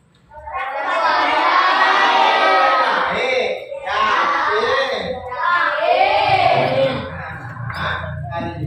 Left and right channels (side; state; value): both; identical; correlation 1.00